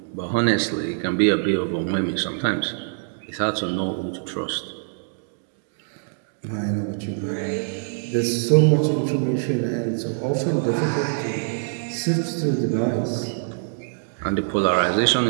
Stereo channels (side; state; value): left; silent; digital silence